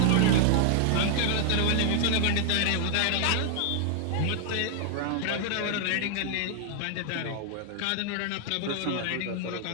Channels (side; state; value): both; different; correlation 0.00